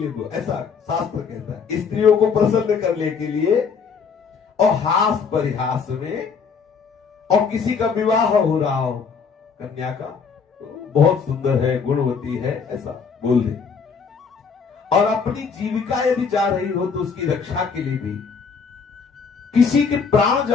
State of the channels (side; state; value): right; quieter; 5.7 dB